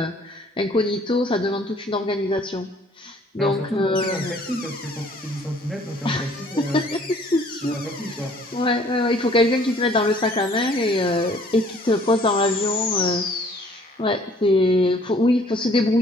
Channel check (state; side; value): normal; both; correlation 0.58